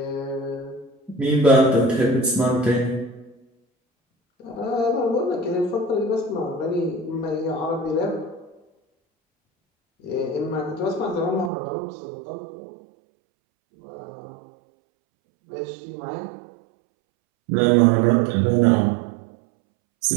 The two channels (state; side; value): drops out; left; at 11.5 s